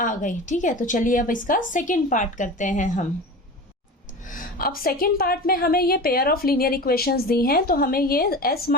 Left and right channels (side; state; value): both; normal; correlation 0.31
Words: गई। ठीक है, तो चलिए अब इसका सेकंड पार्ट करते हैं हम। अब सेकेंड पार्ट में हमें ये पेयर ऑफ लीनियर इक्वेशंस दी हैं, तो हमें ये s